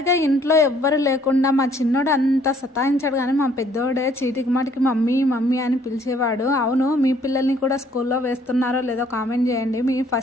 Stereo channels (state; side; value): normal; both; correlation 0.62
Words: ఇంట్లో ఎవ్వరు లేకుండా మా చిన్నోడు అంత సతాయించాడు, కానీ మా పెద్దోడే చీటికి మాటికి మమ్మీ మమ్మీ అని పిలిచేవాడు. అవును, మీ పిల్లల్ని కూడా స్కూల్లో వేస్తున్నారో లేదో కామెంట్ చేయండి. మీ